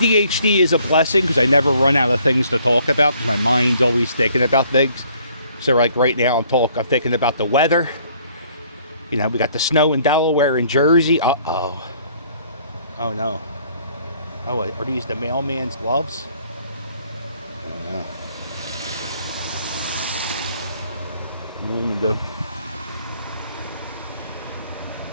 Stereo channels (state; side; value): inverted; both; correlation -0.61